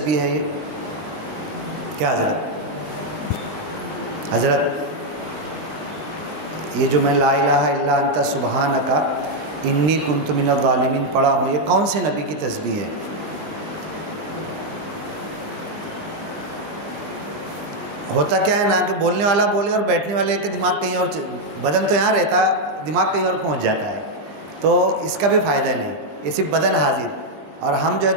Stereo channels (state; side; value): late; left; 20 ms